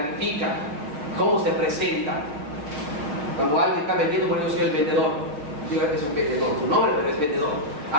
cómo se presenta. Cuando alguien está vendiendo, bueno, yo soy el vendedor. Digo, es un vendedor, su nombre, pero es vendedor.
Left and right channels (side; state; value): left; late; 6.9 ms